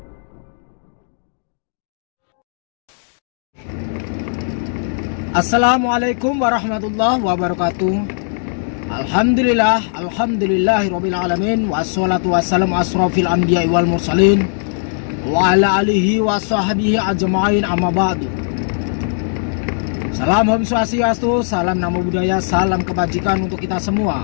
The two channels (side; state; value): right; silent; digital silence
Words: Assalamualaikum warahmatullahi wabarakatuh. Alhamdulillahirabbil alamin wassalatu wassalamu asrofil anbiya'i wal mursalin wa ala alihi wa sahbihi ajma'in amma ba'du. Salam Om Swastiastu, salam Namo Buddhaya, salam kebajikan untuk kita